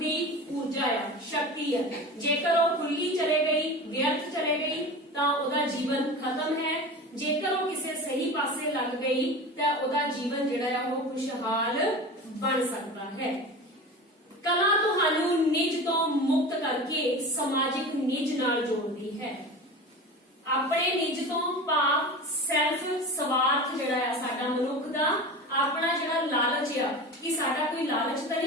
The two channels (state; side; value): normal; both; correlation 0.31